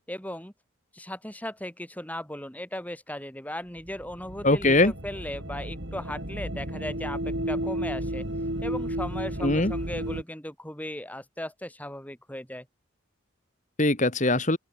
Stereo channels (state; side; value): normal; both; correlation 0.41